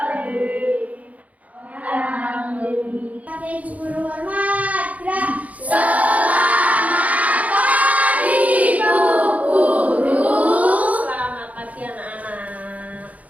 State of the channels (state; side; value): late; left; 0.071 ms